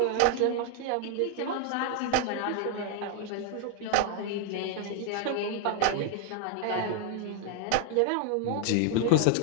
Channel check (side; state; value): both; different; correlation 0.00